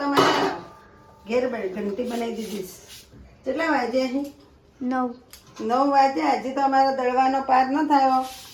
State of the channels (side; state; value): both; identical; correlation 1.00